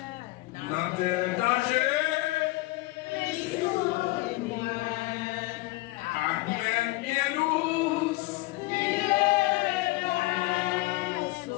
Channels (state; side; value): quieter; right; 21.1 dB